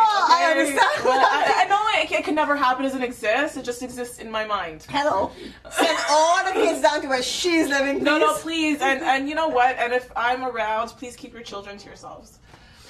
okay? understand. Well, I know it can never happen, doesn't exist. It just exists in my mind. Hello. Send all the kids down to where she's living, please. No, please. And you know what? And if I'm around, please keep your children to yourselves.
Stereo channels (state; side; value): identical; both; correlation 1.00